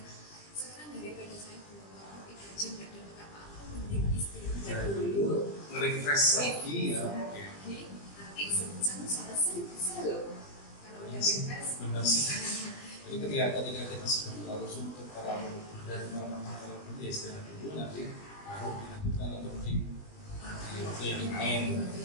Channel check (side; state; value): right; late; 20 ms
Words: Daripada saya buang waktu 3 jam nggak dapat apa-apa, mending istirahat dulu, nge-refresh lagi ya. Nanti sejam selesai bisa loh. Kalau udah refresh. Benar sih. Jadi ketika kita sudah terlalu suntuk, terlalu berat, terlalu ya istirahat dulu, nanti baru dilanjutkan atau di waktu yang lain.